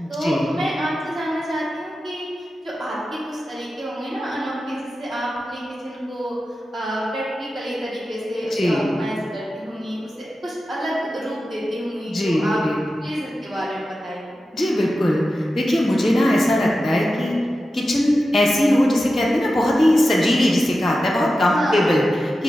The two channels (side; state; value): both; normal; correlation 0.92